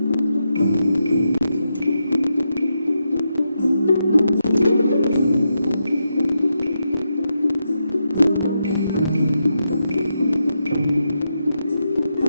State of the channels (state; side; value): inverted; both; correlation -0.85